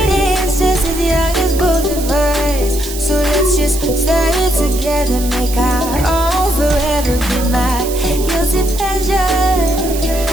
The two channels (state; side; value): noise; right; hiss, 10 dB below the sound